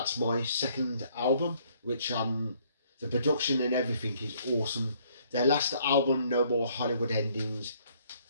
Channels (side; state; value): both; inverted; correlation -0.64